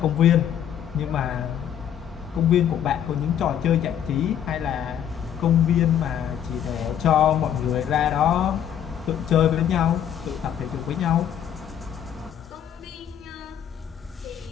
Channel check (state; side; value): quieter; right; 9.5 dB